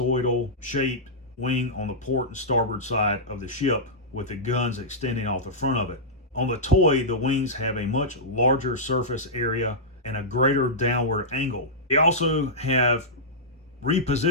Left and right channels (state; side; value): normal; both; correlation -0.13